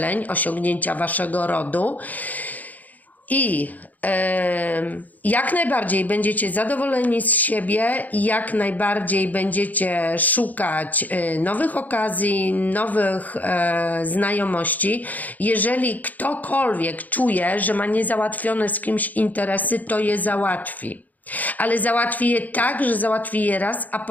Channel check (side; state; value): right; late; 0.080 ms